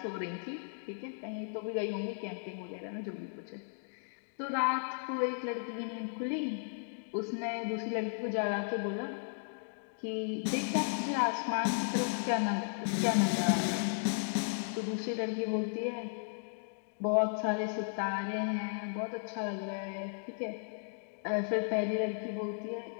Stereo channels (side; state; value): right; silent; digital silence